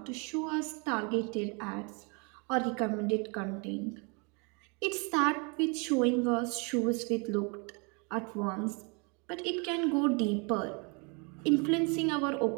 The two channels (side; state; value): left; quieter; 33.0 dB